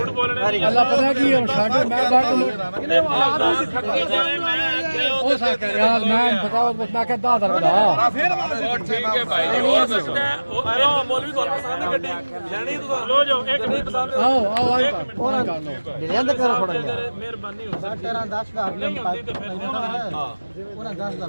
ਬੋਲਣੇ ਦੀ ਅੱਲਾ ਪਤਾ ਕੀ ਹੁਣ ਸਾਡੇ ਮੈਂ ਬਾਹਰ ਇਹਨੇ ਆਵਾਜ਼ ਨਹੀਂ ਦਿੱਤੀ ਮੈਂ ਉਹ ਸਾਕ ਯਾਰ ਮੈਂ ਬਤਾਓ ਮੈਂ ਕਿਹਾ 10,000 ਦਾ ਫਿਰ ਹੋਰ ਠੀਕ ਹੈ ਭਾਈ ਜੀ ਹੋਰ ਦੱਸੋ ਉਹ ਮੌਲਵੀ ਤੁਹਾਨੂੰ ਪਸੰਦ ਹੈ ਗੱਡੀ ਲੈਣੀ ਤੁਸੀਂ ਲੋ ਜਾਓ ਇੱਕ ਨਹੀਂ ਪਸੰਦ ਆਓ ਆਓ ਆਈ ਉਹਨਾਂ ਕਰ ਲਓ ਲੈਂਦੇ ਕਰੋ ਥੋੜਾ ਜਿਹਾ ਮਿਹਰਬਾਨੀ ਹੋ ਸਕਦੀ 10,000 ਨਹੀਂ ਹੁੰਦੀ ਤੇ ਫਿਰ ਉਹਨਾਂ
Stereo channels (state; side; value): inverted; both; correlation -1.00